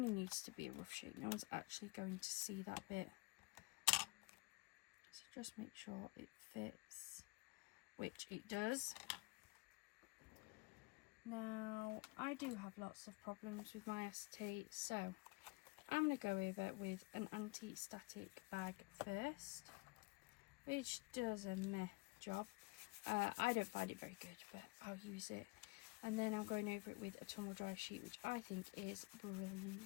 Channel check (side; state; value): right; quieter; 25.1 dB